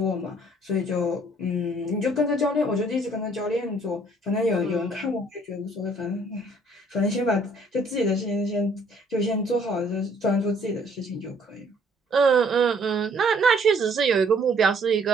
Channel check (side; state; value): both; normal; correlation 0.61